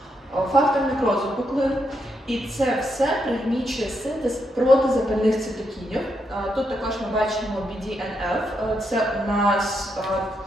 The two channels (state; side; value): normal; both; correlation 0.80